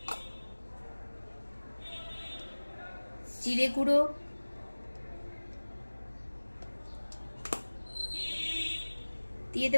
জিরে গুঁড়ো, দিয়ে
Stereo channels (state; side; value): inverted; both; correlation -1.00